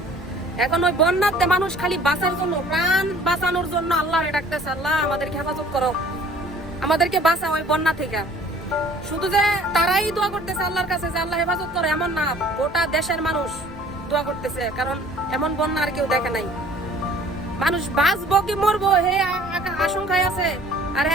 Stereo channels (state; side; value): normal; both; correlation 0.52